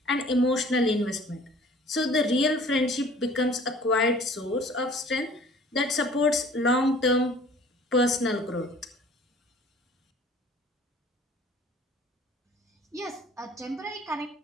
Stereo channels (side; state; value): both; normal; correlation 0.50